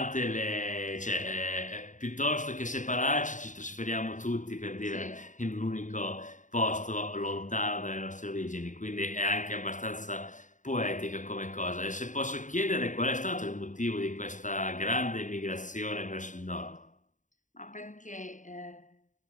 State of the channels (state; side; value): late; right; 0.36 ms